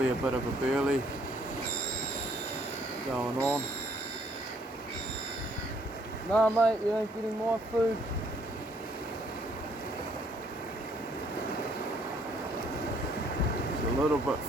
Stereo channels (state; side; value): normal; both; correlation 0.65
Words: a bit of a burley going on. Nah mate, you ain't getting my food. It's a little bit